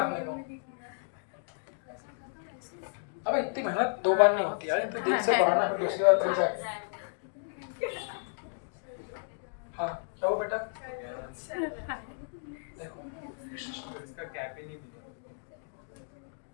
को। अबे इतनी मेहनत 2 बार नहीं होती यार, तो दिल से पढ़ाना, फिर दूसरी बार फिर जाए। हाँ क्या हो बेटा? देखो इसका कैप ही नहीं मिला।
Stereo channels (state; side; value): silent; right; digital silence